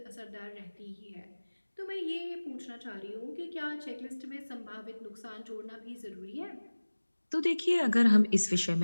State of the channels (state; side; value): inverted; both; correlation -1.00